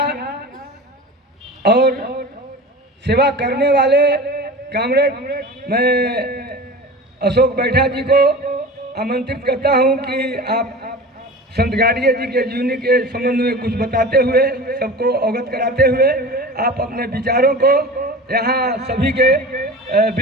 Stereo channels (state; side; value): normal; both; correlation 0.34